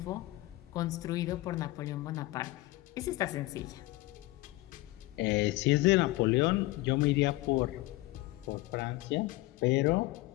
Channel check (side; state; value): right; quieter; 19.2 dB